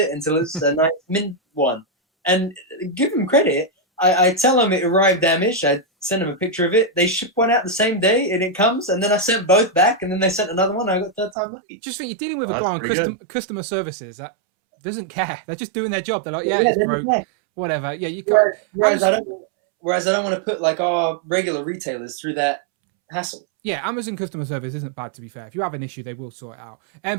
until it's a nice mint one. And give them credit, I tell them it arrived damaged. I send them a picture of it. They ship one out the same day, and it comes. And then I sent both back, and then they sent another one. I got third time lucky. Just think, you're dealing with a guy on customer services that doesn't care. They're just doing their job. They're like, it's broke, whatever. Yeah, you can't. Whereas I don't want to put like our regular retailers through that hassle. Yeah, Amazon customer service isn't bad, to be fair. If you have an issue, they will sort it out.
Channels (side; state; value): left; drops out; at 11.4 s